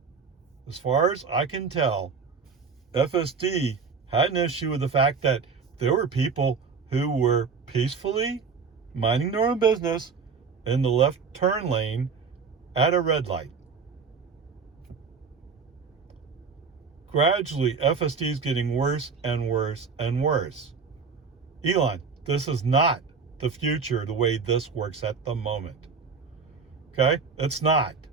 As far as I can tell, FSD had an issue with the fact that there were people who were peacefully minding their own business in the left turn lane at a red light. Gradually, FSD is getting worse and worse and worse. Elon, this is not the future the way this works at the moment. Okay? It's not.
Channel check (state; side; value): quieter; left; 5.3 dB